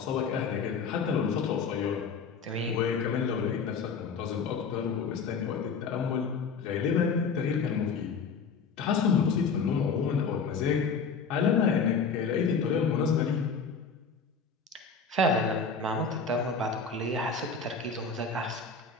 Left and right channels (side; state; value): right; quieter; 5.2 dB